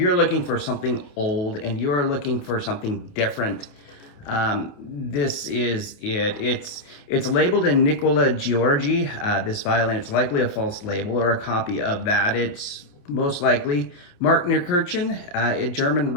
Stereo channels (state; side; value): late; right; 28 ms